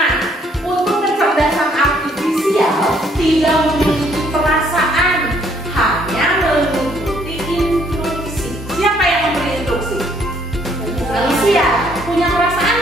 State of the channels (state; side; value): normal; both; correlation 0.66